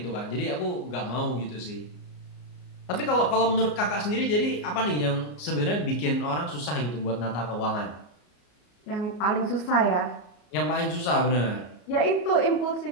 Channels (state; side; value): late; right; 34 ms